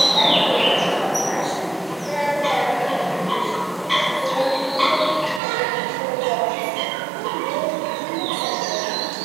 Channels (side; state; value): left; drops out; at 5.4 s